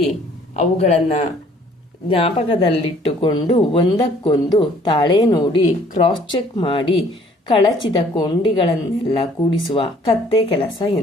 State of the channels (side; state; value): both; normal; correlation 0.58